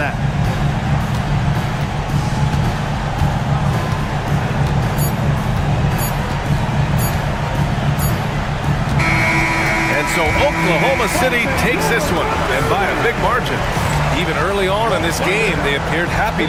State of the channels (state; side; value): identical; both; correlation 1.00